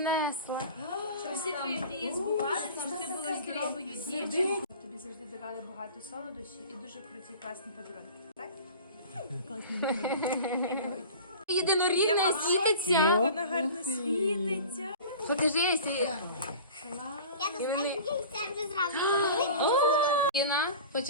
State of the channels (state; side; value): inverted; both; correlation -0.39